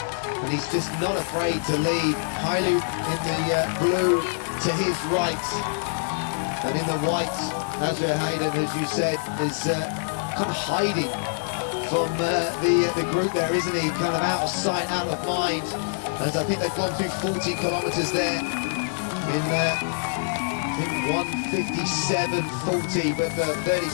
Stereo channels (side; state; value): right; silent; digital silence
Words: And he's just not afraid to lead. Hailu in the blue to his right, and in the white, Asrar Hiyrden, as you said, is kind of hiding from the group there, isn't he? Kind of out of sight, out of mind, as I think they've gone through 40 kilometres there in I think 1:57.40, but 30,